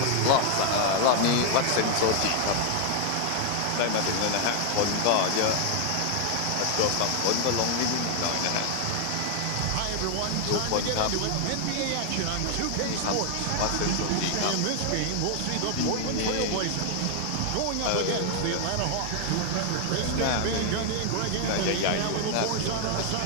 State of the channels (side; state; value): both; different; correlation 0.00